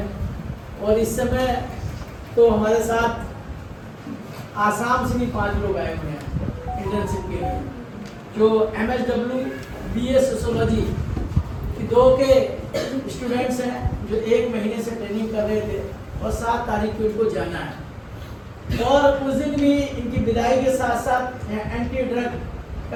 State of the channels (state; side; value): identical; both; correlation 1.00